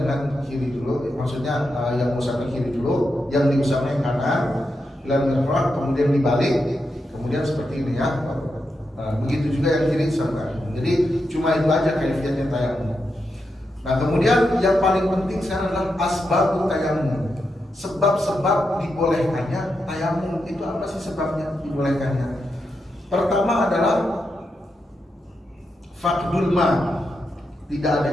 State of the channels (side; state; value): both; normal; correlation 0.86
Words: kiri dulu, maksudnya yang mengusapnya kiri dulu, yang diusapnya kanan, lalu kemudian dibalik, kemudian seperti ini ya. Begitu juga yang kiri sampai. Jadi cuma itu aja kaifiatnya tayamum. Nah, kemudian yang paling penting sekarang adalah asbabut tayamum. Sebab-sebab dibolehkannya tayamum. Itu apa sih sebabnya dibolehkannya? Pertama adalah faqdul ma, tidak